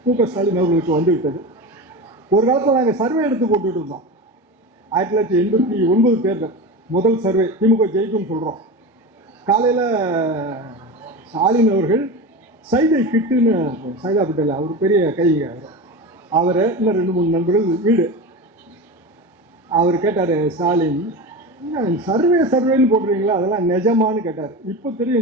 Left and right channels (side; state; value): both; normal; correlation 0.26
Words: மு.க. ஸ்டாலின் அவர்களுக்கு வந்து விட்டது. ஒரு காலத்தில் நாங்கள் சர்வே எடுத்து போட்டுட்டு இருந்தோம். 1989 தேர்தல் முதல் சர்வே, திமுக ஜெயிக்கும் சொல்றோம். காலையில ஸ்டாலின் அவர்கள் சைதை கிட்டுன்னு, சைதா பட்டேல் அவர் பெரிய கைங்க, அவரை இன்னும் 2-3 நண்பர்கள் வீடு. அவர் கேட்டாரு, ஸ்டாலின் சர்வேன்னு போடுறீங்களா, அதெல்லாம் நிஜமானு கேட்டார். இப்போ